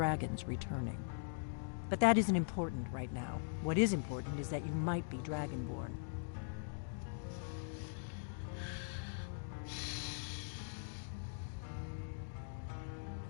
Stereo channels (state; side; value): silent; right; digital silence